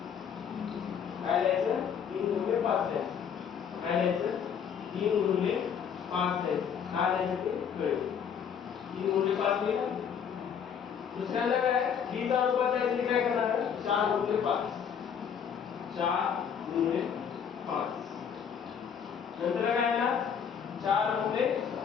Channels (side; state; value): right; quieter; 7.6 dB